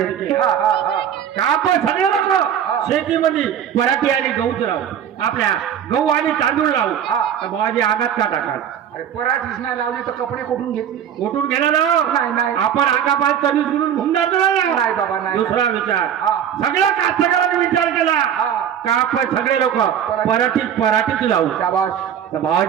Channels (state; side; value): quieter; left; 9.1 dB